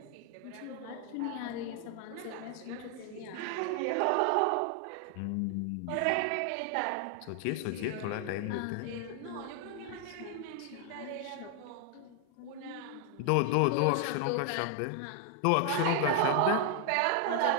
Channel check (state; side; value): different; both; correlation 0.00